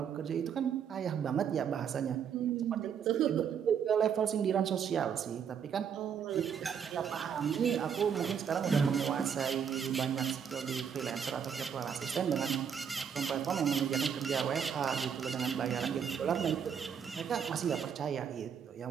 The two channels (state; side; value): quieter; left; 7.6 dB